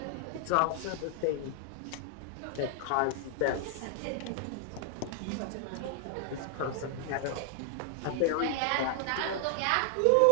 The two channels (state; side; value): different; both; correlation 0.00